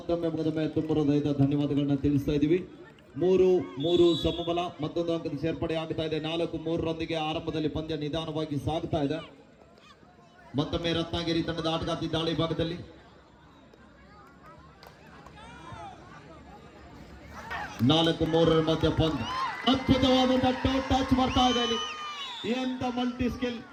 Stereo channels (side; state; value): both; identical; correlation 1.00